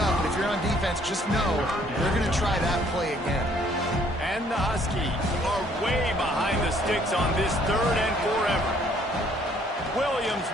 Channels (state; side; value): normal; both; correlation 0.63